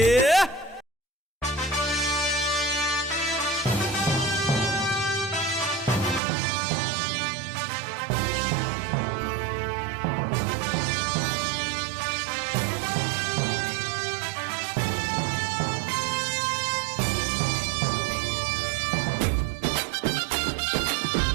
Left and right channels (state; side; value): drops out; left; at 6.2 s